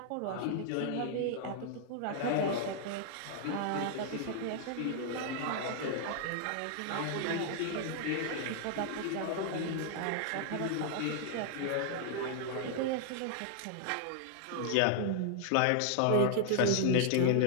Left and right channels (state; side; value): different; both; correlation 0.00